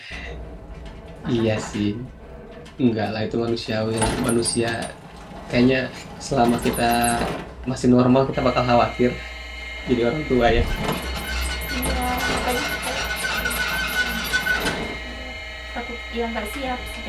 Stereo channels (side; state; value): both; identical; correlation 1.00